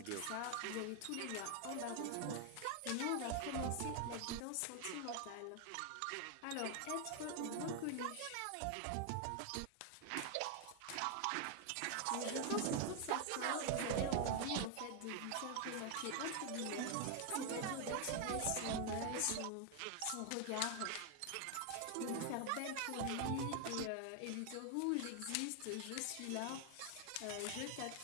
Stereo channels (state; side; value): different; both; correlation 0.00